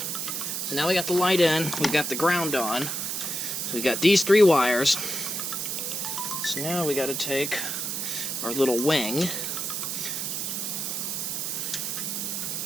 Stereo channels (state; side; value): noise; right; hiss, 2 dB below the sound